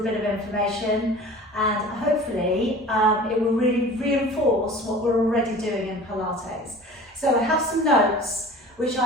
bit of information, and hopefully it will really reinforce what we're already doing in Pilates. So I have some notes which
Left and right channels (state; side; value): normal; both; correlation 0.41